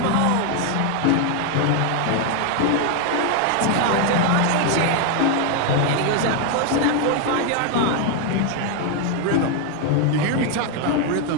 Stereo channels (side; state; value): both; different; correlation 0.01